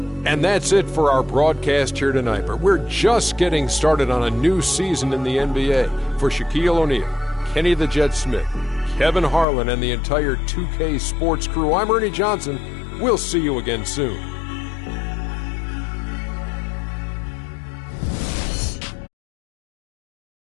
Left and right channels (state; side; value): drops out; right; at 9.5 s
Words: And that's it for our broadcast here tonight. But we're just getting started on a new season in the NBA. For Shaquille O'Neal, Kenny the Jet Smith, Kevin Harlan, and the entire 2K Sports crew, I'm Ernie Johnson. We'll see you again soon.